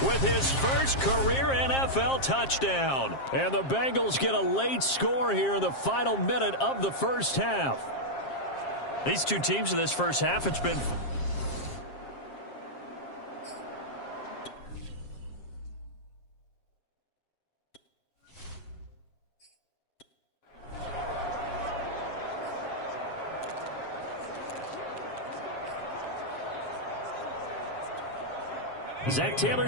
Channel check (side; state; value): right; late; 7.5 ms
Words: with his first career NFL touchdown. And the Bengals get a late score here in the final minute of the first half. These two teams in this first half, it's been... Zach